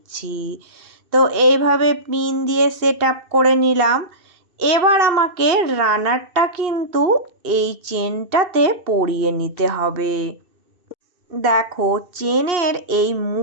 তো এইভাবে পিন দিয়ে সেট আপ করে নিলাম। এবার আমাকে রানারটা কিন্তু এই চেনটাতে পরিয়ে নিতে হবে। দেখো চেনের এই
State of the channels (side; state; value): left; late; 2.8 ms